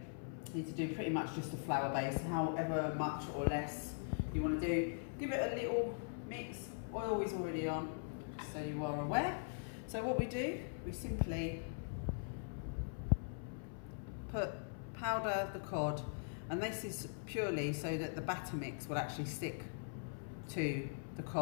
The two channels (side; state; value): right; silent; 50 dB below the other